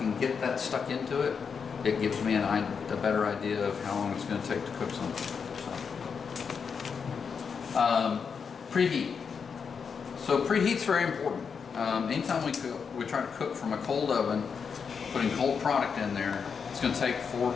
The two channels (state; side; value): quieter; right; 6.1 dB